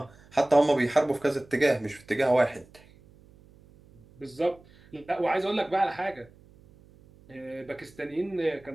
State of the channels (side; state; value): right; noise; hum, 26 dB below the sound